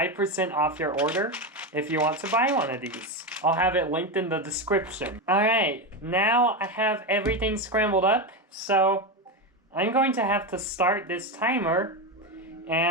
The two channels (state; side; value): normal; both; correlation 0.14